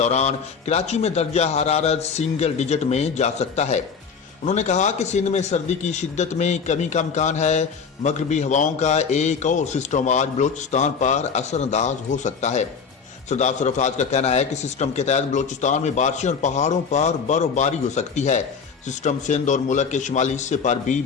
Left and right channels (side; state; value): right; quieter; 5.9 dB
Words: कराची में दर्जा हरारत सिंगल डिजिट में जा सकता है। उन्होंने कहा कि सिंध में सर्दी की शिद्दत में कमी का इम्कान है। मगरबी हवाओं का एक और सिस्टम आज बलूचिस्तान पर असरअंदाज हो सकता है। सरदार सरफराज का कहना है कि सिस्टम के तहत बलूचिस्तान में बारिशें और पहाड़ों पर बर्फबारी हो सकती है। सिस्टम सिंध और मुल्क के शुमाली हिस्से पर भी